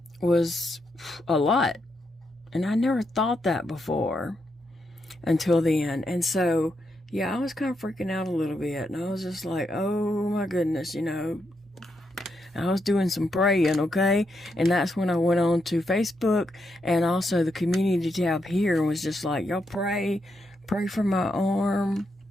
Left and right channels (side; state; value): both; normal; correlation 0.81